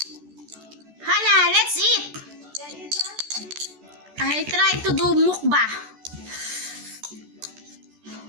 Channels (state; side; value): late; left; 14 ms